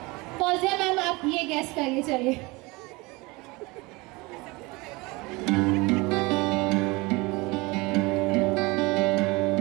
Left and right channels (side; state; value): left; quieter; 24.2 dB